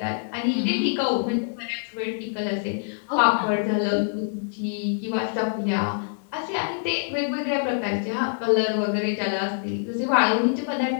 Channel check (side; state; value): right; silent; digital silence